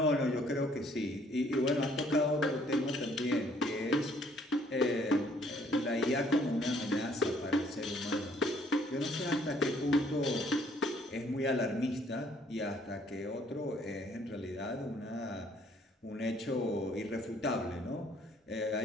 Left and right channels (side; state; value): both; normal; correlation 0.63